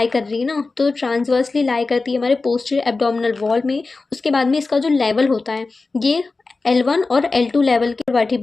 कर रही है ना, तो ट्रांसवर्सली लाई करती है हमारे पोस्टीरियर एब्डोमिनल वॉल में। उसके बाद में इसका जो लेवल होता है ये L1 और L2 लेवल के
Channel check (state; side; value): quieter; right; 3.8 dB